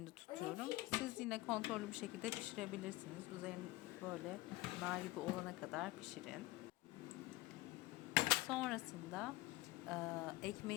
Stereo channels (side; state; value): right; quieter; 19.1 dB